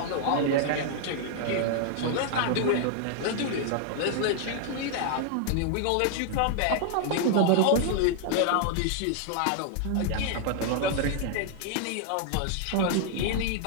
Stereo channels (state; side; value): different; both; correlation -0.01